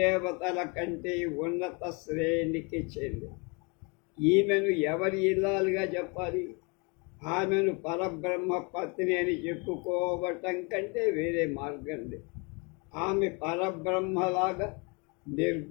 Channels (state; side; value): quieter; right; 31.6 dB